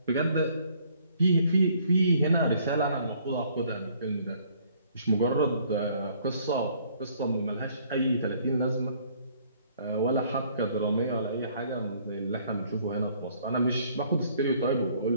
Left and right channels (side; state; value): both; inverted; correlation -0.61